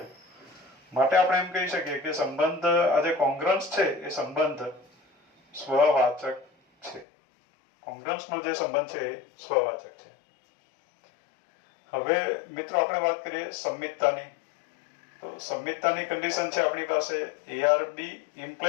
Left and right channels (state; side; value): drops out; right; at 7.1 s